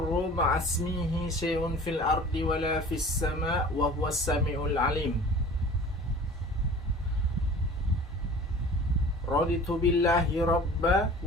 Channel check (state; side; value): normal; both; correlation 0.43